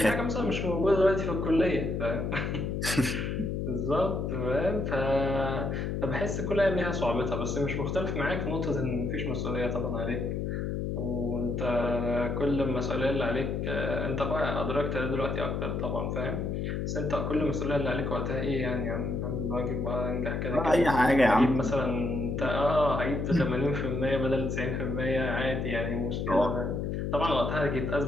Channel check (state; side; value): noise; left; hum, 1 dB below the sound